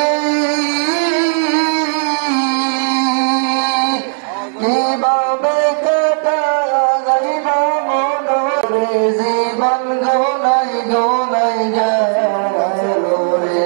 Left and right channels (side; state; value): left; silent; 67 dB below the other